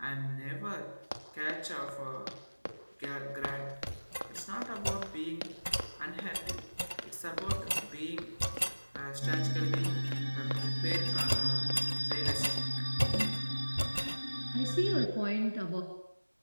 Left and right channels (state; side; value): inverted; both; correlation -1.00